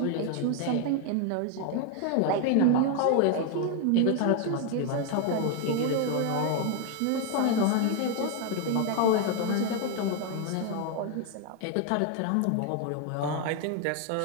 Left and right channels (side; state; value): both; different; correlation 0.01